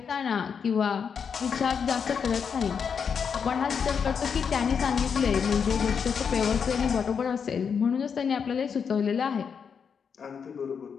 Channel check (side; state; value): right; quieter; 6.6 dB